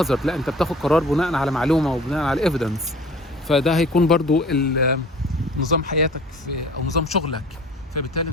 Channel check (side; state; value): both; normal; correlation 0.46